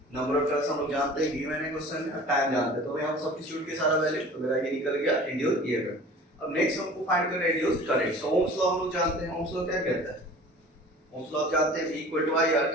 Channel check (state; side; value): normal; both; correlation 0.43